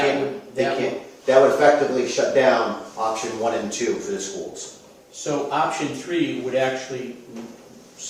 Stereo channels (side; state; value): both; identical; correlation 1.00